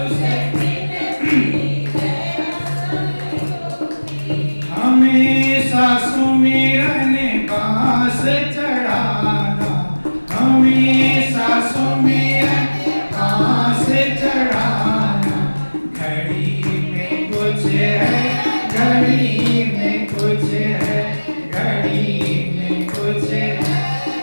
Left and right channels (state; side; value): inverted; both; correlation -1.00